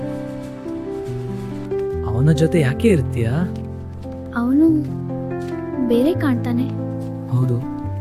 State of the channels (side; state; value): both; identical; correlation 1.00